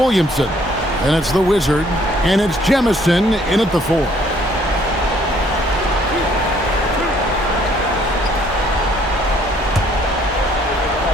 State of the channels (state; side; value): normal; both; correlation 0.63